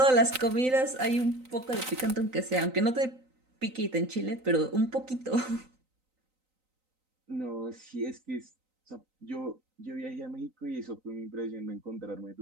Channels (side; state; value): left; late; 3.9 ms